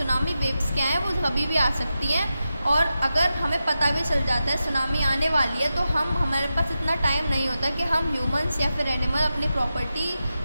वेव्स क्या है? वो कभी भी आ सकती हैं. और अगर हमें पता भी चल जाता है सुनामी आने वाली है तो हमारे पास इतना टाइम नहीं होता कि हम ह्यूमंस या फिर एनिमल अपनी प्रॉपर्टी,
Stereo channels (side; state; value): both; inverted; correlation -0.91